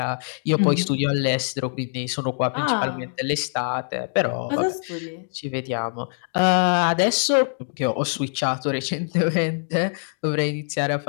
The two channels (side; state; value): right; silent; digital silence